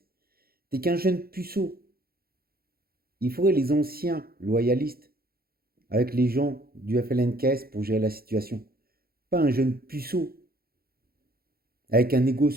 T'es qu'un jeune puceau. Il faudrait les anciens loyalistes avec les gens du FLNKS pour gérer la situation. Pas un jeune puceau avec un ego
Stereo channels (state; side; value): late; left; 0.44 ms